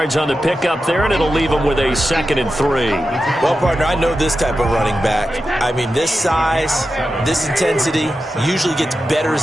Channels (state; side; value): normal; both; correlation 0.91